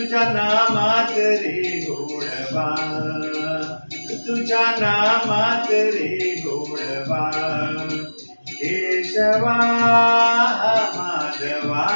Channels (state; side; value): inverted; both; correlation -1.00